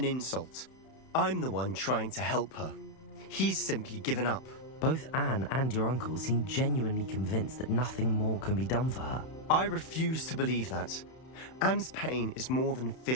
insult. I'm the one trying to help her. He's simply given up. Both Anne and your uncle seem genuinely convinced that nothing more can be done for her. I refuse to believe that. Anne's pain is more than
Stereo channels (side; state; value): right; late; 31 ms